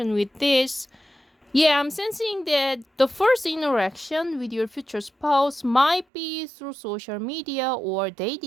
with this. Yeah, I'm sensing that the first interaction with your future spouse might be through social media or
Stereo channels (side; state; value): left; drops out; at 6.1 s